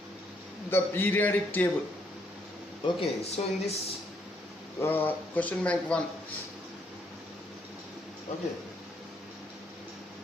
the periodic table. Okay, so in this question bank 1. Okay,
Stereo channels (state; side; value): normal; both; correlation 0.71